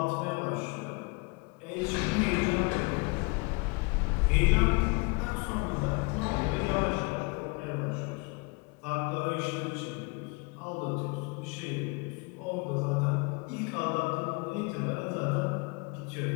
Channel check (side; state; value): right; quieter; 29.8 dB